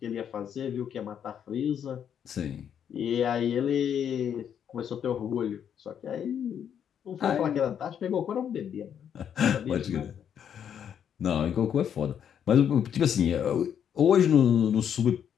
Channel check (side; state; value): right; quieter; 8.7 dB